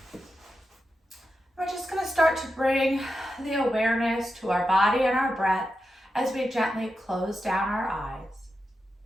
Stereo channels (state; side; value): normal; both; correlation 0.89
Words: We're just going to start to bring the awareness to our body and our breath as we gently close down our eyes.